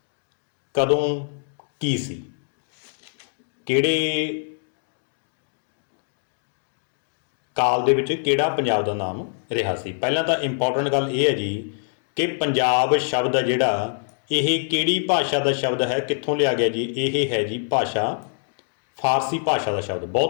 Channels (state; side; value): silent; right; digital silence